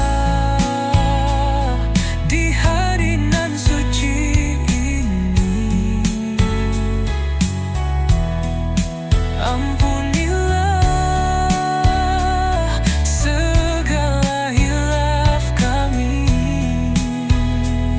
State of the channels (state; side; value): identical; both; correlation 1.00